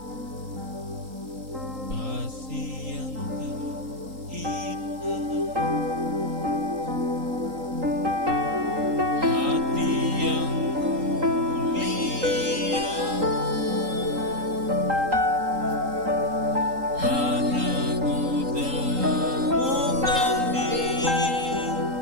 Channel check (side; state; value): left; late; 3.8 ms